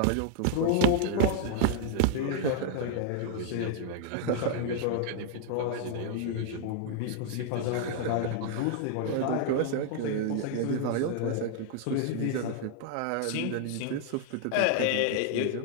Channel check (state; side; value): different; both; correlation 0.00